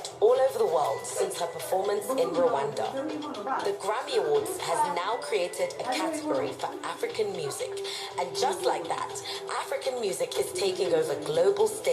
all over the world since her performance in Rwanda. The Grammy Awards has now created a category for African music, and just like that, African music is taking over global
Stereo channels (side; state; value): both; identical; correlation 1.00